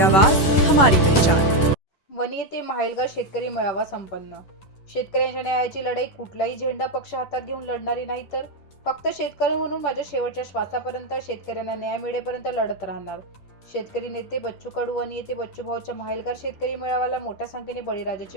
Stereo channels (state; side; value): late; right; 11 ms